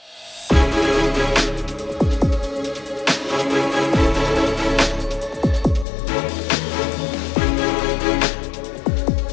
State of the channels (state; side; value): drops out; right; at 5.9 s